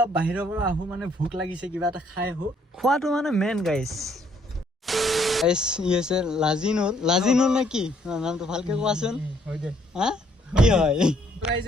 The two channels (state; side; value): normal; both; correlation 0.67